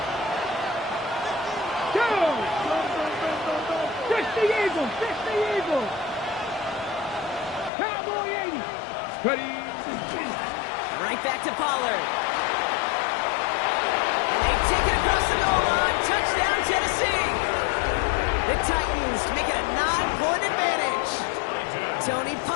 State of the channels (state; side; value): drops out; right; at 7.7 s